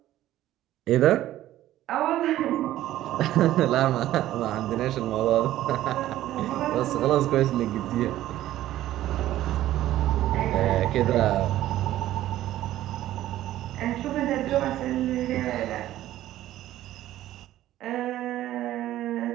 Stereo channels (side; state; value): left; quieter; 13.9 dB